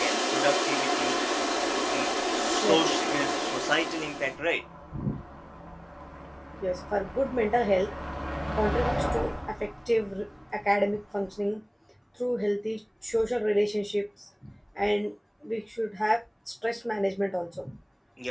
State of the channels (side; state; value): both; identical; correlation 1.00